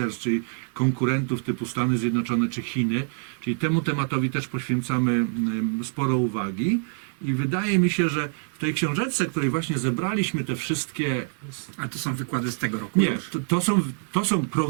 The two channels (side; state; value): left; silent; 61 dB below the other